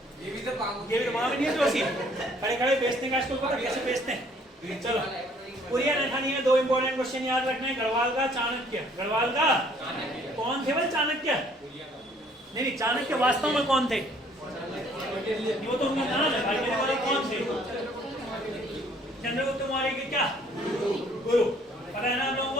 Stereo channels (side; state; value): both; normal; correlation 0.60